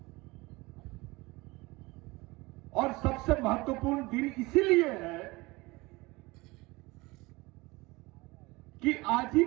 और सबसे महत्वपूर्ण दिन इसीलिए है कि आज ही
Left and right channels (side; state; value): left; quieter; 22.5 dB